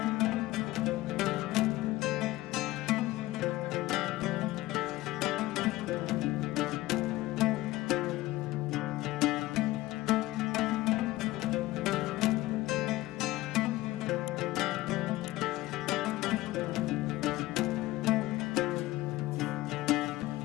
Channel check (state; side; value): quieter; right; 17.9 dB